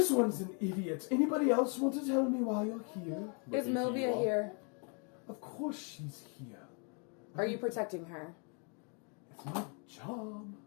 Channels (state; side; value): quieter; right; 37.8 dB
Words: one's an idiot. Anybody else want to tell me why you're here?" Is Looking to you Milvia all. here? Of course she's here. Are you protecting her? It's my job.